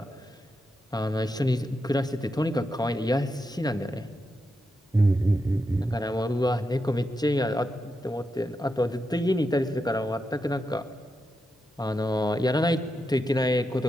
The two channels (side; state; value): both; normal; correlation 0.86